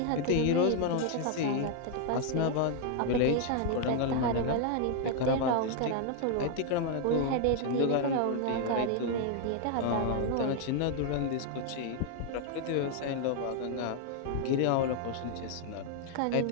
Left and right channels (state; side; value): different; both; correlation 0.00